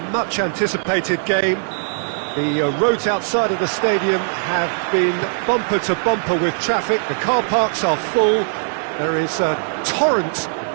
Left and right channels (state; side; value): silent; left; digital silence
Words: much-anticipated game. The roads outside of the stadium have been bumper to bumper with traffic. The car parks are full. There is a torrent